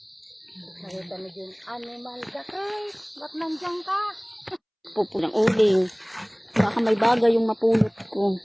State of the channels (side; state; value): both; identical; correlation 1.00